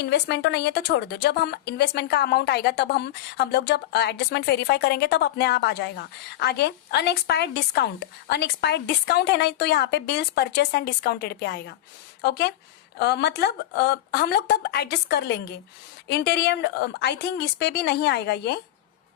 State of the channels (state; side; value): quieter; right; 13.7 dB